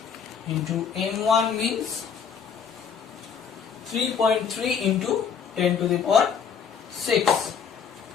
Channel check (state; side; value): quieter; right; 6.9 dB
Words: into m1 means 3.3 into 10 to the power 6.